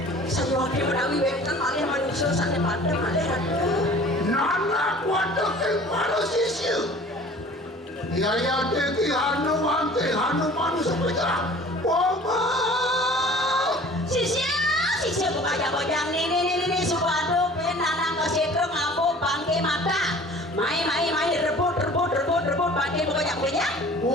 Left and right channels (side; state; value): both; normal; correlation 0.47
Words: saya wakil menawi webkan malih manusia sana pada malih ada Nana kuat ke manusia. Yaya teti hanu wante hanu manusuk bedah. Mama. Sisia bukajang-bajang ini suatu penanang kesetrum aku bangke mata mai rebut bangke bukajang-bajang